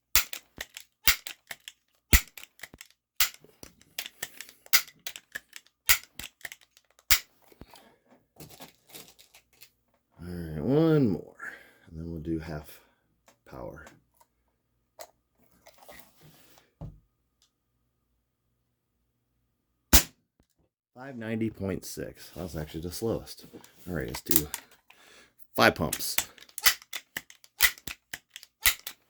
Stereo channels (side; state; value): both; identical; correlation 1.00